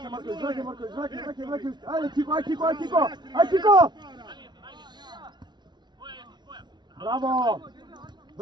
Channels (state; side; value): late; left; 0.21 ms